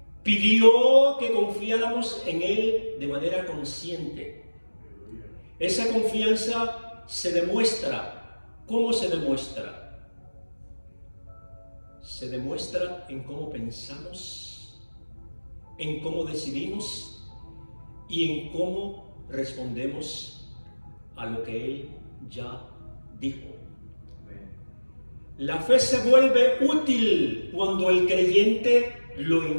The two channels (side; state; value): both; inverted; correlation -1.00